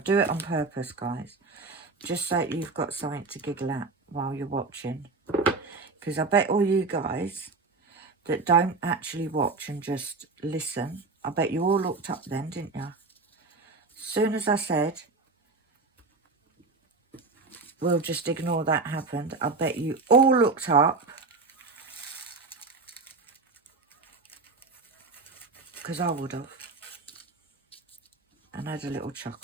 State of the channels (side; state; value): left; quieter; 3.9 dB